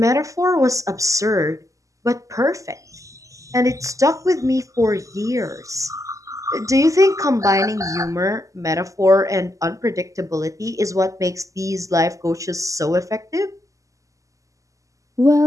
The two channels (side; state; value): left; late; 0.16 ms